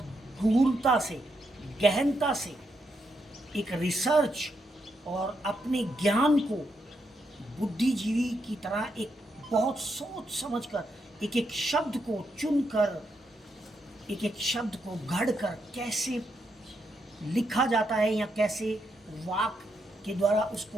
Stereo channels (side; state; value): both; normal; correlation 0.81